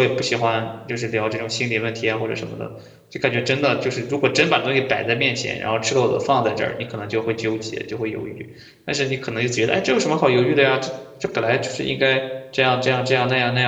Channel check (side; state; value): both; identical; correlation 1.00